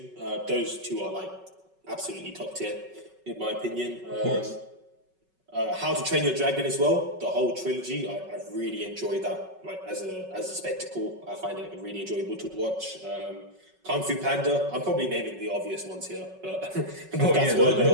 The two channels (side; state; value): left; late; 5.3 ms